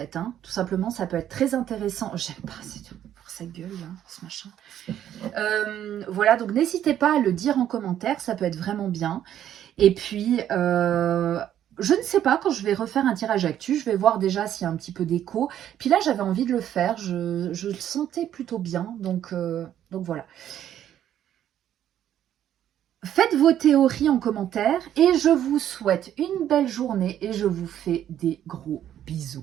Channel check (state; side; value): quieter; left; 10.8 dB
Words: Hein. Tout simplement, ça peut être très intéressant. J'aime pas, c'est tout. sa gueule, hein, ce machin. Voilà, donc n'hésitez pas à le dire en commentaire, ça peut être vraiment bien. Et puis, je ne sais pas, quand je vais refaire un tirage actu, je vais voir déjà s'il y a un petit peu d'écho. Puis là, j'avais envie de le faire, je le sentais plutôt bien, donc voilà. Faites vos théories en commentaire et je vous souhaite une belle journée et je vous fais des gros